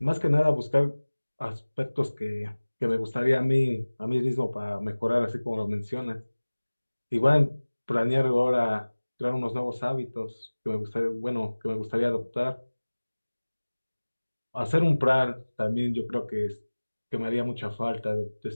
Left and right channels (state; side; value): inverted; both; correlation -1.00